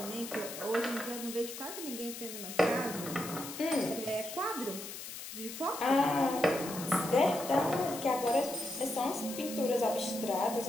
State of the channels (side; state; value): left; noise; hiss, 9 dB below the sound